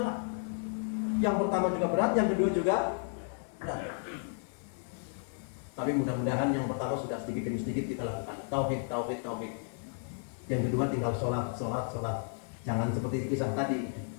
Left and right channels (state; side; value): silent; right; 56 dB below the other